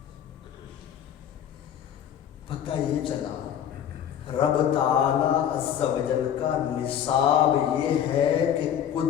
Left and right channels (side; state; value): right; quieter; 9.6 dB